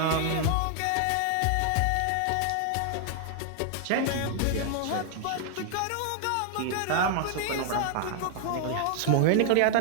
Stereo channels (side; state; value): both; different; correlation 0.00